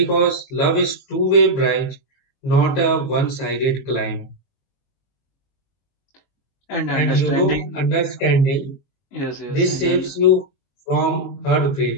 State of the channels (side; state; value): right; late; 22 ms